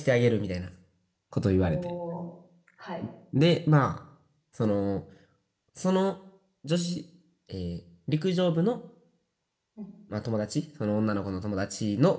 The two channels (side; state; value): both; identical; correlation 1.00